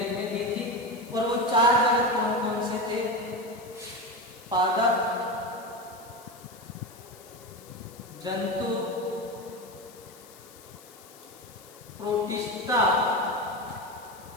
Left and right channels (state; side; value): noise; left; hiss, 21 dB below the sound